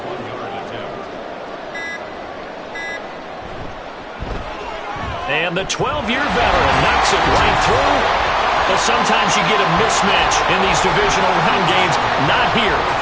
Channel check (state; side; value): identical; both; correlation 1.00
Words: And the 12-year veteran knocks it right through. But sometimes you get a mismatch in these divisional round games. Not here.